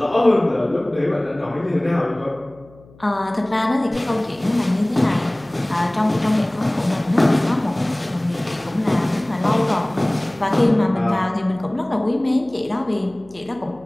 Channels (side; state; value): left; noise; hum, 25 dB below the sound